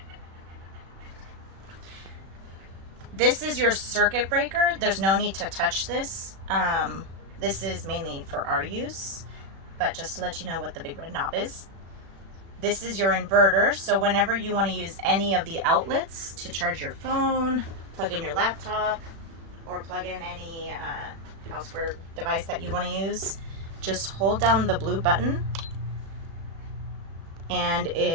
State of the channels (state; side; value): late; left; 36 ms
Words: This is your circuit breaker. There's no need to touch this. This is mainly for our use, but just to let you know what the big red knob is. This is your inverter, so whenever you want to use any of the outlets to charge your phone, plug in your laptop, or plug in any houseware device that you want to use, just hold down the blue button and